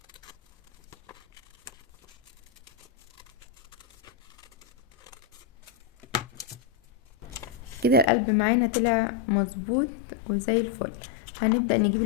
كده. القلب معانا طلع مظبوط وزي الفل. هنبدأ نجيب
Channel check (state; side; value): drops out; right; at 8.1 s